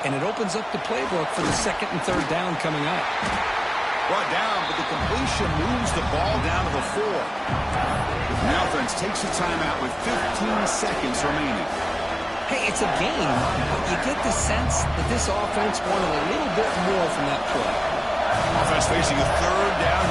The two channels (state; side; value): identical; both; correlation 1.00